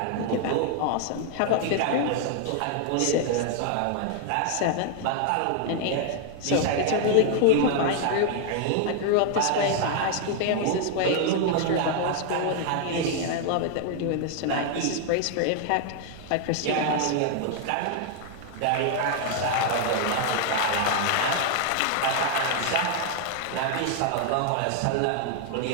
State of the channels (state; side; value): different; both; correlation 0.00